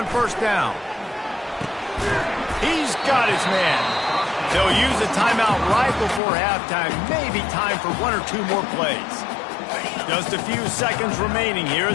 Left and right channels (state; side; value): drops out; right; at 6.2 s